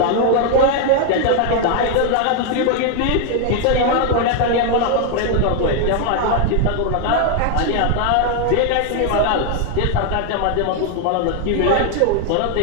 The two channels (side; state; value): both; different; correlation 0.01